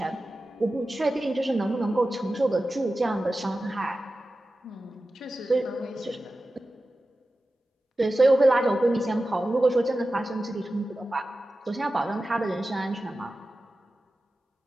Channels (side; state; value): both; normal; correlation 0.94